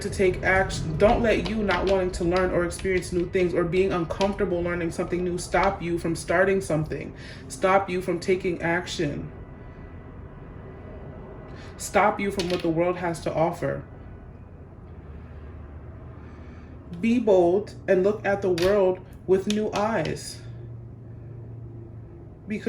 to take action, don't let you not wanting to learn or experience new things or being uncomfortable learning something new stop you from starting something, stop you from taking action, stop you from what the world has to offer. Be bold and look at the world with new eyes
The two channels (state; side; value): identical; both; correlation 1.00